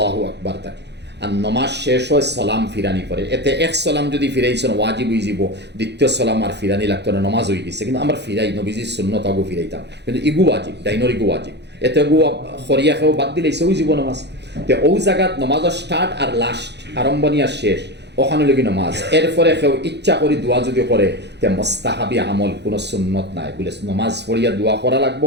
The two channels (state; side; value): late; left; 0.50 ms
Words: আকবার থাকে, আর নমাজ শেষ হয় সালাম ফিরানি পরে। এতে এক সালাম যদি ফিরাইছেন ওয়াজিব হয়ে যাব, দ্বিতীয় সালাম আর ফিরানি লাগতো না, নমাজ হয়ে গেছে। কিন্তু আমরা ফিরাই নবীজির সুন্নত আগু ফিরাইতাম, কিন্তু ইগু ওয়াজিব, ডাইনর ইগু ওয়াজিব, এতে গু খরিয়া খেয়েও বাদ দিলেছে ওই জীব নমাজ। তো ওই জায়গাত নমাজের স্টার্ট আর লাস্ট, আরম্ভণী আর শেষ, ওখানে লগি নমাজ। এরপরে কেউ ইচ্ছা করি দোয়া যদি করে তে মোস্তাহাবি আমল, কোনো সুন্নত নাই বলে নমাজ পড়িয়া দোয়া করা লাগবো,